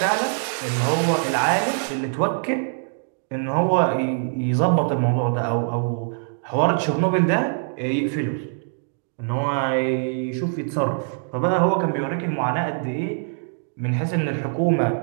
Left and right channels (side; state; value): left; silent; digital silence